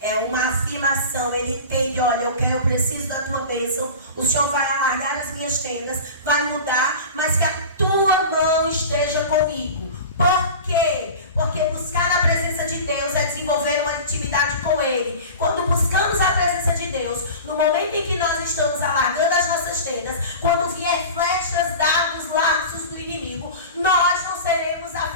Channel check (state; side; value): inverted; both; correlation -0.34